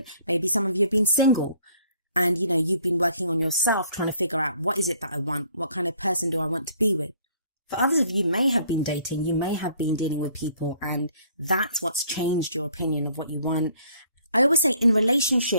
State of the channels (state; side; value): inverted; both; correlation -0.61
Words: Maybe some of you have been single and, you've been working on yourself, trying to figure out, what is it that I want? What kind of person do I want to be with? For others of you may have been dating, you may have been dealing with people, and that's what's changed your opinion of what you want. I always say in